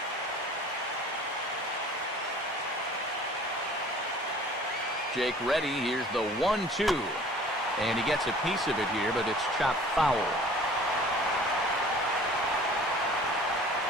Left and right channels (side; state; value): both; normal; correlation 0.48